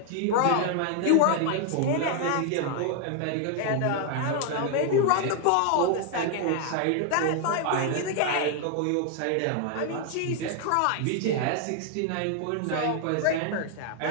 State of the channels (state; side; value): different; both; correlation 0.00